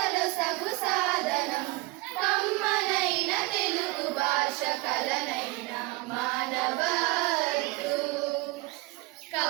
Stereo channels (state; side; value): quieter; left; 22.8 dB